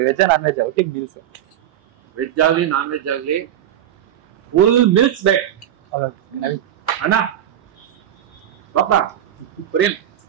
ವೆಜ್ ನಾನ್ ವೆಜ್ ಒಟ್ಟಿಗೆ ಮೀಲ್ಸ್. ವೆಜ್ ಆಗ್ಲಿ ನಾನ್ ವೆಜ್ ಆಗ್ಲಿ ಫುಲ್ ಮೀಲ್ಸ್ ಬೇಕು ಅಣ್ಣ. ಬಾಪ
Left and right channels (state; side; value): quieter; left; 11.2 dB